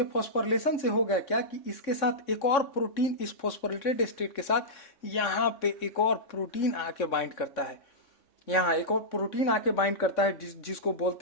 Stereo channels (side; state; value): right; late; 3.6 ms